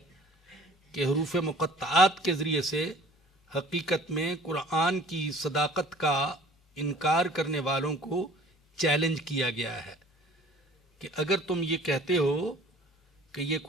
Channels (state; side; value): normal; both; correlation 0.50